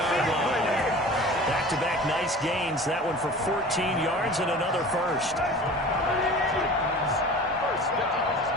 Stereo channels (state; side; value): normal; both; correlation 0.40